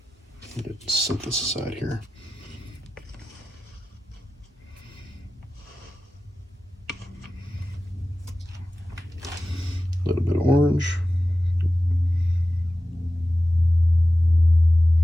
Let's set this aside here. A little bit of orange.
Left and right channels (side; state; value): both; normal; correlation 0.94